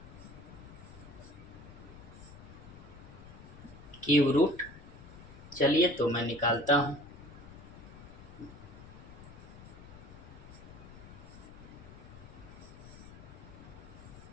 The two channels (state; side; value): noise; left; rumble, 16 dB below the sound